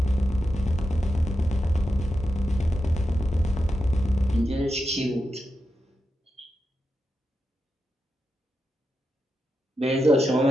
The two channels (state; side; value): normal; both; correlation 0.88